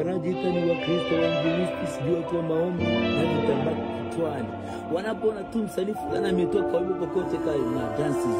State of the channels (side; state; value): both; identical; correlation 1.00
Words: ni Wakristo wainjilisti, sijui watu wa maombi na vitambaa kichwani, wanapoona tu msanii fulani ametoka wimbo kokote kale na dansi